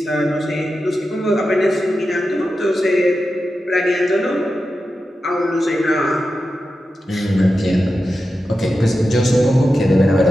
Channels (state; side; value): normal; both; correlation 0.91